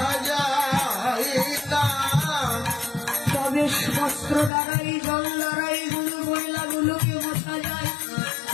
তবে বস্ত্র দ্বারাই জল দ্বারাই গুলো মহিলাগুলোকে মোছা যায়,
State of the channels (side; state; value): right; drops out; at 4.5 s